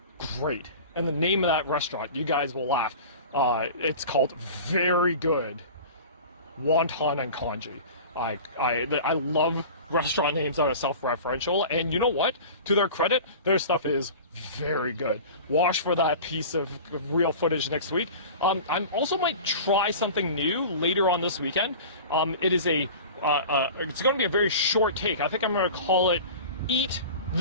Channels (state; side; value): inverted; both; correlation -0.37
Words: great. And the name of that restaurant, you guys will laugh. It's called Very Good Wonton and Congee. I love restaurant names that are self-referential, and you know what? To their credit, their stuff is very good. Watch for that piece of real footage next week. I also might try something new later on this weekend. It is it's going to be a very short take. I think I'm going to call it "Eat